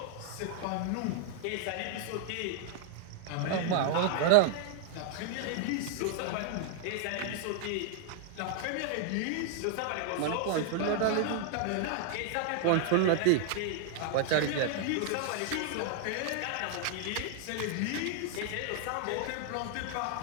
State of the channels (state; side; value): different; both; correlation -0.01